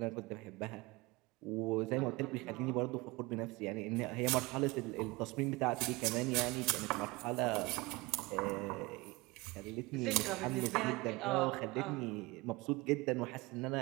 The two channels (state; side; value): quieter; left; 23.4 dB